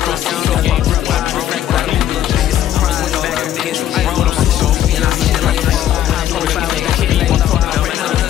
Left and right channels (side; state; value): right; quieter; 11.6 dB